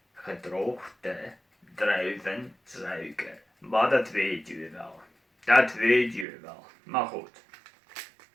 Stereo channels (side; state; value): left; drops out; at 6.2 s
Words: gedroogde druivensuiker. Maar dat weet u wel. Dat weet u wel. Maar goed.